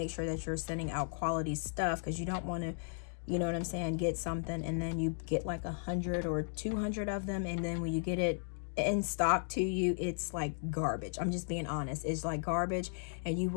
sure that you're sending out quality stuff, because you don't want to, you know what I'm saying, get something and then you get like 100 or 200 of them, and then when you get it in stock to you, it's like garbage. I'm just being honest. It's like garbage, and you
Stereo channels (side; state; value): right; silent; digital silence